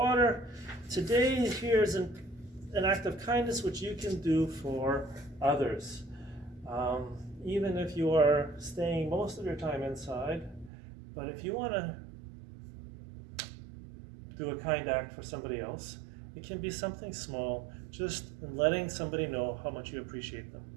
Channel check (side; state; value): left; drops out; at 10.7 s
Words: Today, here's an act of kindness which you can do for others. Even if you are staying most of your time inside, but if you want to do a kind act for somebody else, it can be something small, just letting somebody know how much you appreciate them.